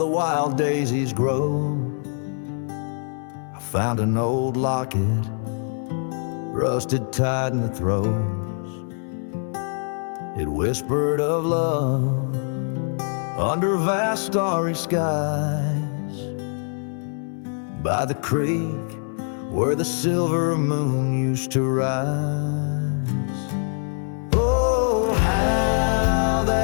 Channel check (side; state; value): right; silent; 63 dB below the other